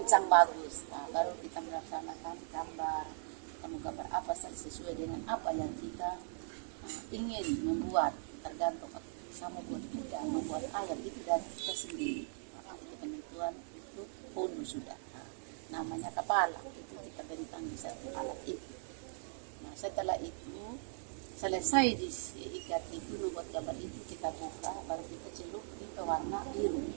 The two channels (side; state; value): left; silent; digital silence